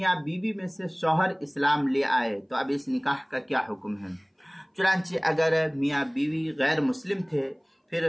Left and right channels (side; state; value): both; identical; correlation 1.00